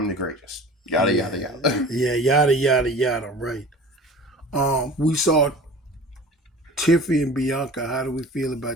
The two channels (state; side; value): normal; both; correlation 0.41